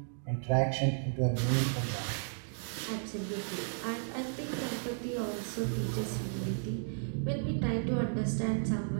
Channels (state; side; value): silent; left; digital silence